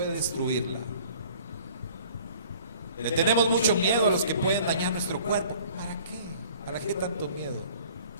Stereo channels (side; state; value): both; inverted; correlation -0.51